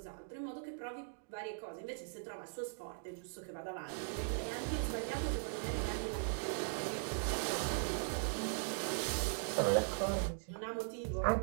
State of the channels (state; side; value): silent; left; digital silence